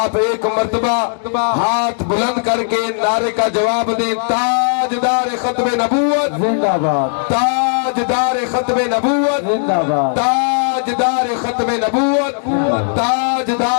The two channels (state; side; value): silent; right; digital silence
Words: ایک مرتبہ ہاتھ بلند کر کے نعرے کا جواب دیں. تاجدار ختم نبوت زندہ باد, تاجدار ختم نبوت زندہ باد, تاجدار ختم نبوت,